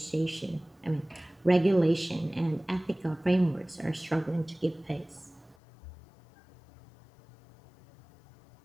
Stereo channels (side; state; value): right; drops out; at 5.6 s